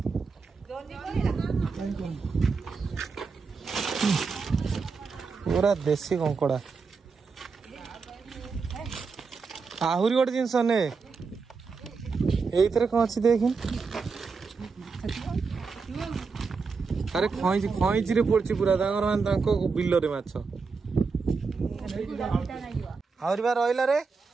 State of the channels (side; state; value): left; quieter; 4.8 dB